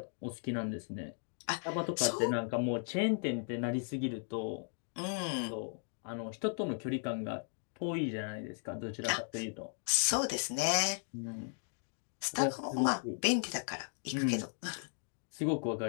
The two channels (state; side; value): silent; right; 54 dB below the other